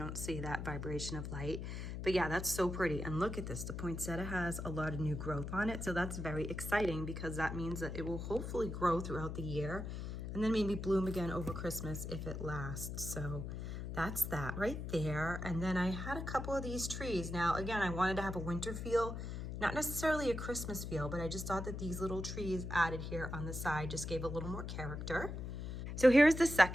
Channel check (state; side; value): noise; left; hum, 5 dB below the sound